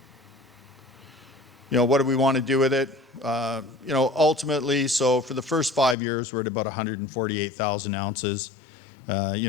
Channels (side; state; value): right; drops out; at 6.0 s